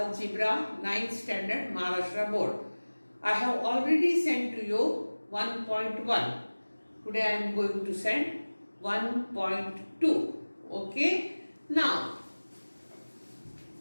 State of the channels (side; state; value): both; inverted; correlation -1.00